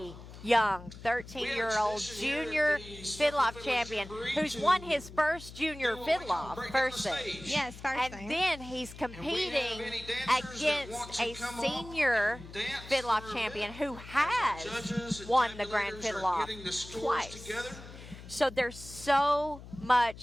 young 13-year-old junior Fiddle-Off champion who's won his first junior Fiddle-Off, first thing. Yes, first thing. And then he's competing against a senior Fiddle-Off champion who has won the Grand Fiddle-Off twice. So there's so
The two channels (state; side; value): noise; left; hum, 15 dB below the sound